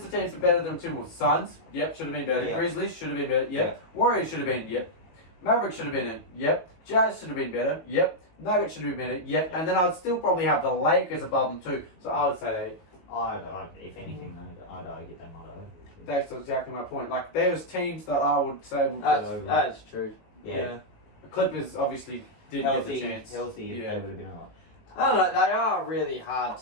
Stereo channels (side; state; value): right; late; 19 ms